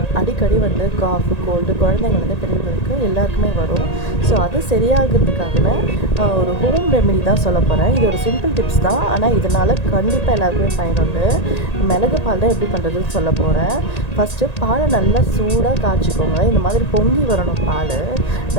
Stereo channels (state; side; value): late; right; 1.8 ms